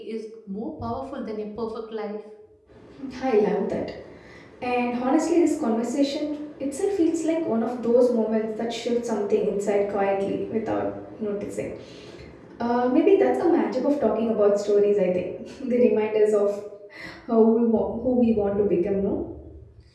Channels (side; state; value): both; identical; correlation 1.00